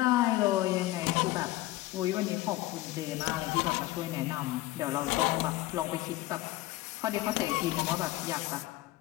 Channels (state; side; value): quieter; right; 17.4 dB